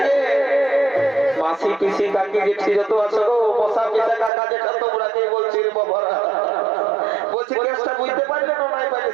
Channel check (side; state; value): left; drops out; at 4.3 s